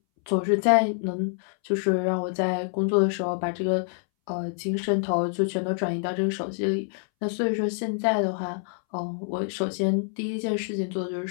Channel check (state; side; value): silent; right; 61 dB below the other